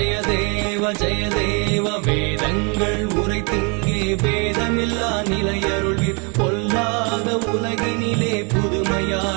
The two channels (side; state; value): left; quieter; 33.8 dB